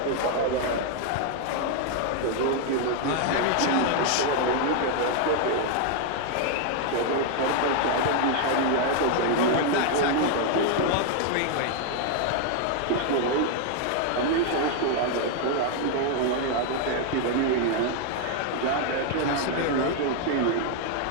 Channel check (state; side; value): different; both; correlation 0.00